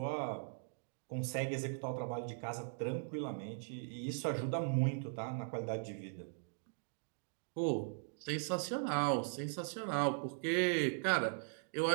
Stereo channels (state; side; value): silent; left; digital silence